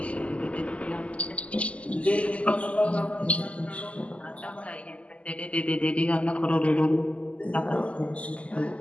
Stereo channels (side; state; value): right; late; 0.062 ms